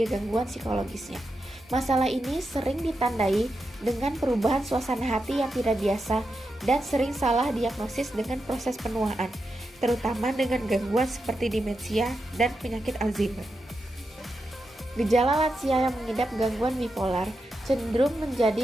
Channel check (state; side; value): normal; both; correlation 0.87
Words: gangguan psikologisnya. Masalah ini sering ditandai dengan perubahan suasana hati yang tidak biasa dan sering salah diagnosis dengan proses penuaan, terutama dengan gangguan seperti demensia dan penyakit Alzheimer. Gejala lansia yang mengidap gangguan bipolar cenderung